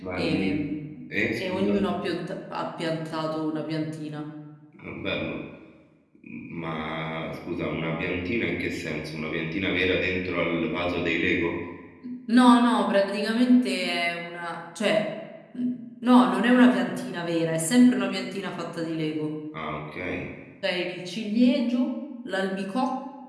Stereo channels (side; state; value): both; identical; correlation 1.00